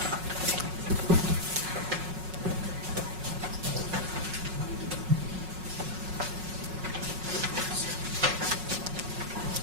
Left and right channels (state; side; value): late; left; 5.4 ms